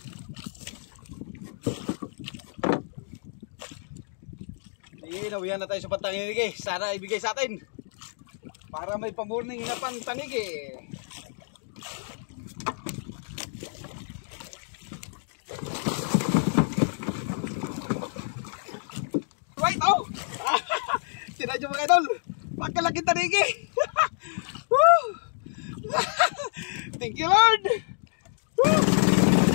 Nawihan na tayo sa pantanigi. Sana ibigay sa atin para may pamorning na pantanigi. Right, oh! Sinadyo mga idol, pagkalaki tanigi. Thank you Lord.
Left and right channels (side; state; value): right; silent; digital silence